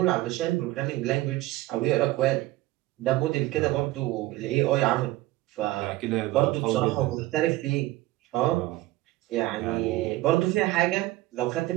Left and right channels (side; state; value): left; quieter; 17.8 dB